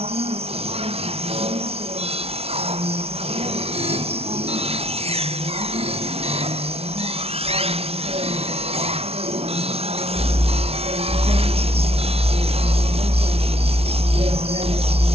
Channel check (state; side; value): late; left; 0.30 ms